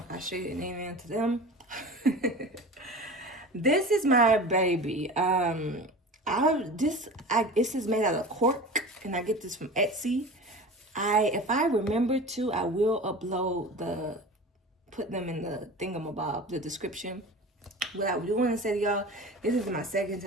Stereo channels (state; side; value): normal; both; correlation 0.35